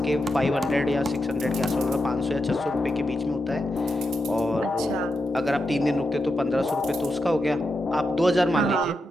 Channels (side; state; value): both; normal; correlation 0.87